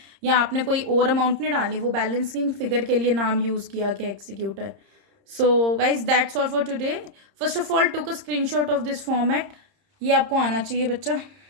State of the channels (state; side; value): late; left; 30 ms